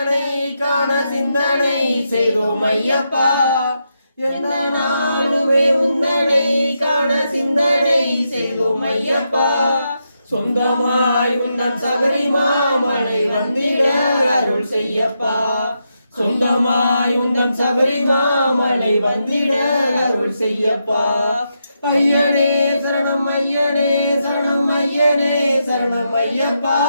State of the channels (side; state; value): both; inverted; correlation -0.83